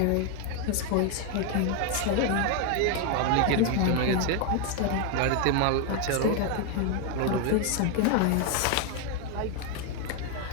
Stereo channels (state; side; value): different; both; correlation 0.01